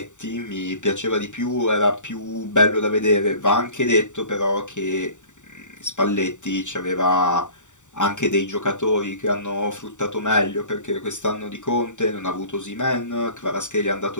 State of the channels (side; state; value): right; late; 0.85 ms